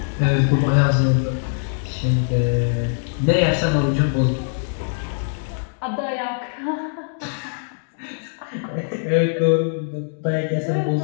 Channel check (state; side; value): silent; right; digital silence